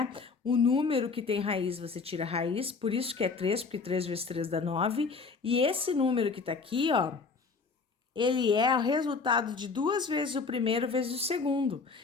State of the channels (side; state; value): right; quieter; 4.7 dB